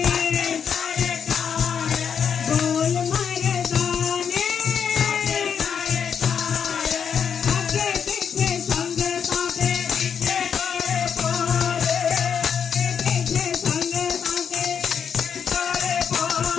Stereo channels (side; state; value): right; quieter; 7.3 dB